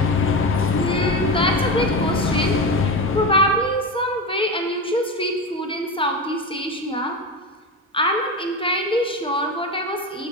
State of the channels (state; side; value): normal; both; correlation 0.21